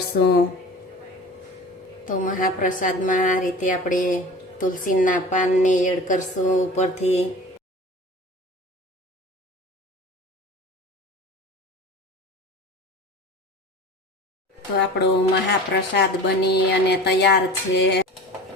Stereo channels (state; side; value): normal; both; correlation 0.38